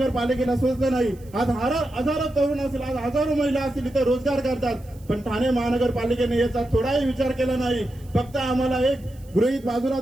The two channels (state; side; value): noise; right; hiss, 28 dB below the sound